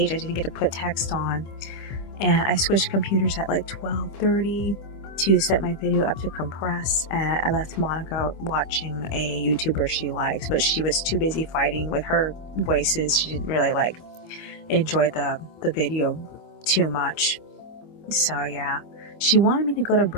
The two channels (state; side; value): late; right; 25 ms